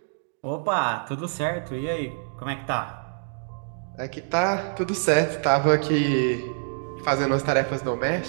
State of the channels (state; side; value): silent; left; digital silence